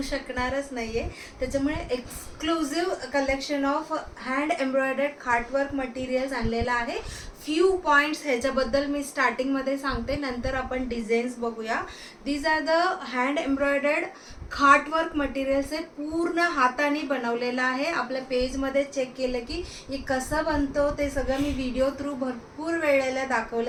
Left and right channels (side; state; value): both; identical; correlation 1.00